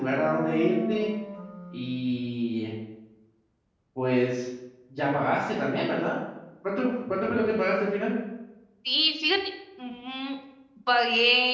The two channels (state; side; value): identical; both; correlation 1.00